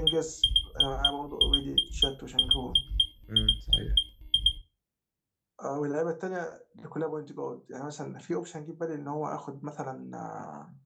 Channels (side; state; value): both; identical; correlation 1.00